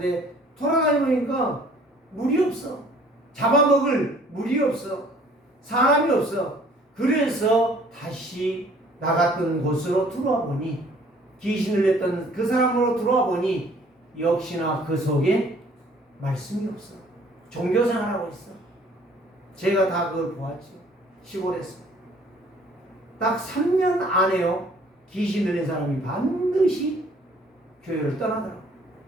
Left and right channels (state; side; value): normal; both; correlation 0.56